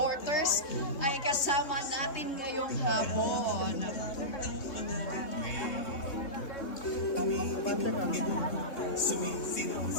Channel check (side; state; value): right; late; 3.6 ms